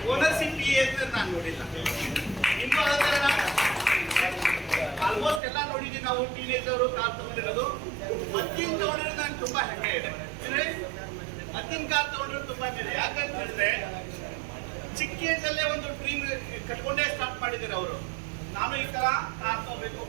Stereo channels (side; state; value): left; drops out; at 5.4 s